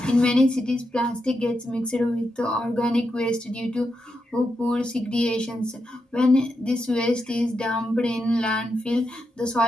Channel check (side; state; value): both; normal; correlation 0.85